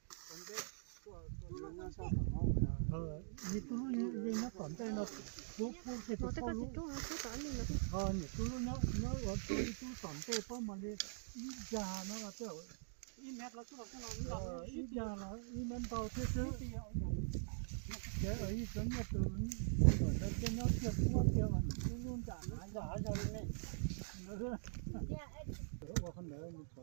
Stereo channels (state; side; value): silent; left; digital silence